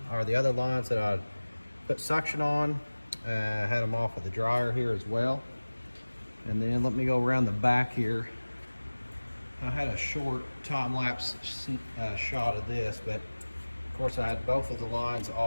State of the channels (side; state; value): both; inverted; correlation -1.00